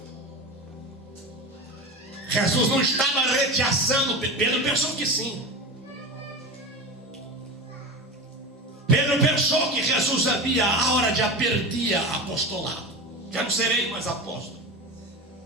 Jesus não estava rechaçando Pedro, pensou que sim. Pedro pensou que Jesus havia a hora de perder apostolado. Já não serei mais apóstolo.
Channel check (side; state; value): both; normal; correlation 0.26